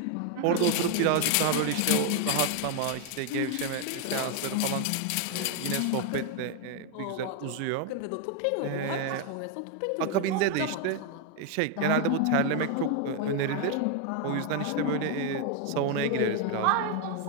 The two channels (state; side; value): different; both; correlation 0.01